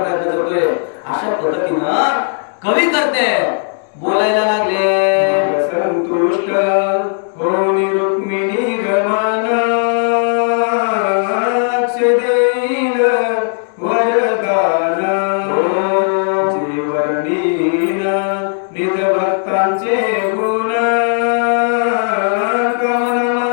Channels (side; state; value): right; silent; digital silence